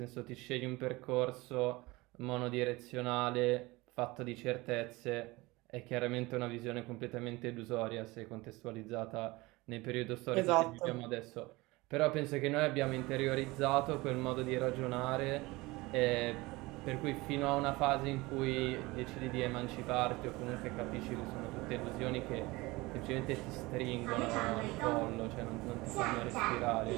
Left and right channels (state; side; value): quieter; left; 21.9 dB